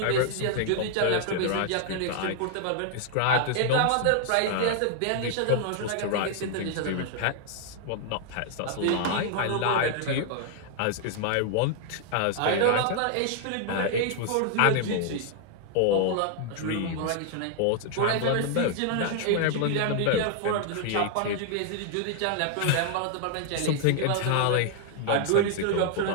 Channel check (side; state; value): both; different; correlation 0.00